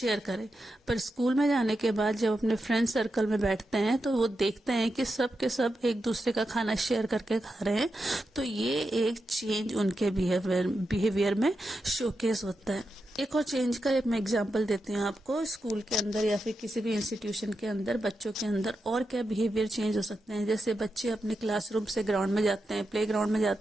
करें। पर स्कूल में जाने के बाद जब अपने फ्रेंड सर्कल में बैठते हैं तो वो देखते हैं कि सब के सब एक दूसरे का खाना शेयर करके खा रहे हैं, तो ये एक चेंज उनके बिहेवियर में शोकेस होता है। एक और चेंज का एक मैं एग्जांपल देती हूँ आपको। स्कूल के अंदर या फिर किसी भी इंस्टीट्यूशन के अंदर बच्चों के अंदर और क्या बिहेवियर चेंज हो सकते हैं। जैसे बच्चे अपने क्लासरूम से ग्राउंड में जाते हैं, प्ले ग्राउंड में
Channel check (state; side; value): normal; both; correlation 0.88